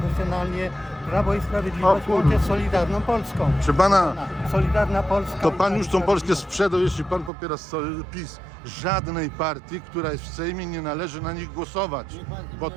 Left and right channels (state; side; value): drops out; left; at 7.3 s